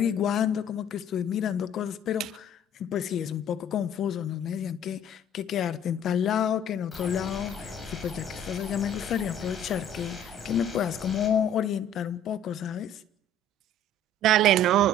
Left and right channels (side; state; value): both; normal; correlation 0.52